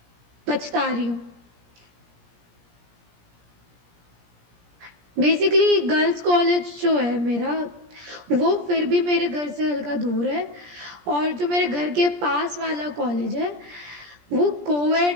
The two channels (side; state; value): left; late; 17 ms